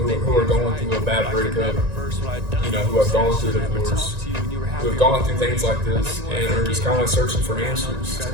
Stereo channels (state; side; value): late; left; 1.9 ms